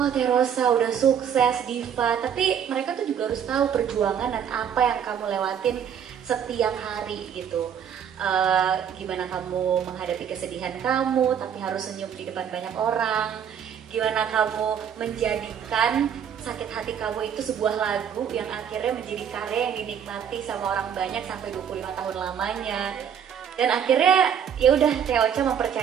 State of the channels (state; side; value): quieter; left; 8.3 dB